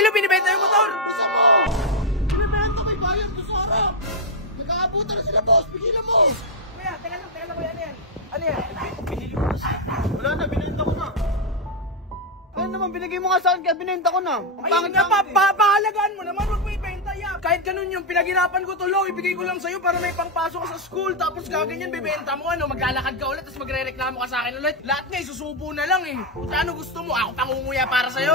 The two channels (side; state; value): both; normal; correlation 0.00